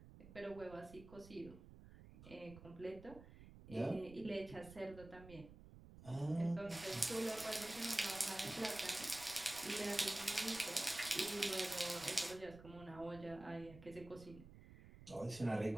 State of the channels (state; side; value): noise; right; rumble, 16 dB below the sound